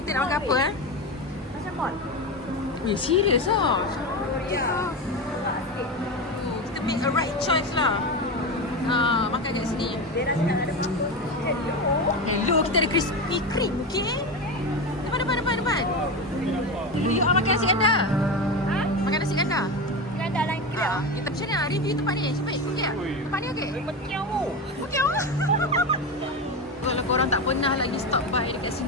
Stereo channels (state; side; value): normal; both; correlation 0.19